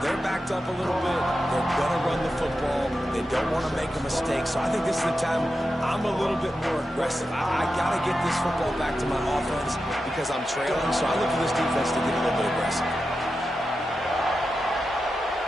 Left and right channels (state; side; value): normal; both; correlation 0.90